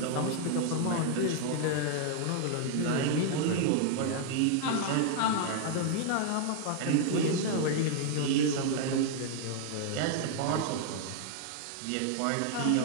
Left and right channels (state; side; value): different; both; correlation 0.00